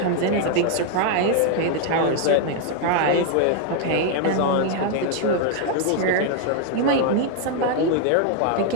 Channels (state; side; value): different; both; correlation 0.00